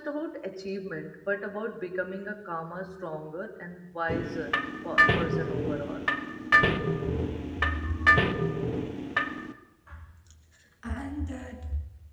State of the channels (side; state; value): both; identical; correlation 1.00